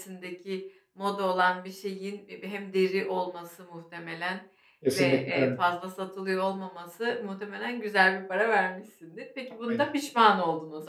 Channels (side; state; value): both; identical; correlation 1.00